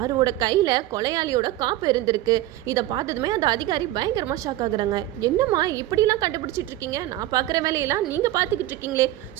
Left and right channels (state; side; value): quieter; left; 15.2 dB